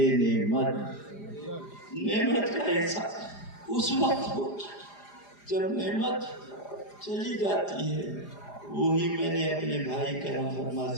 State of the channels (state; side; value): late; right; 4.9 ms